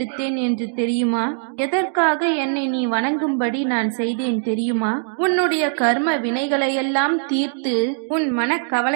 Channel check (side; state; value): left; silent; digital silence